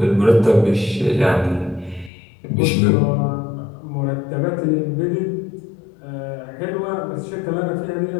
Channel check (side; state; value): right; drops out; at 2.1 s